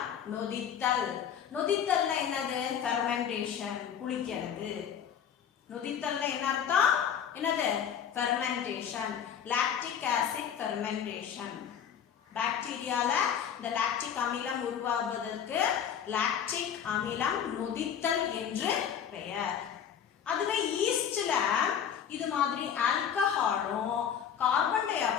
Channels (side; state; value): right; quieter; 8.4 dB